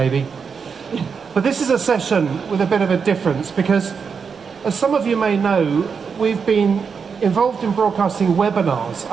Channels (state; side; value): quieter; left; 5.9 dB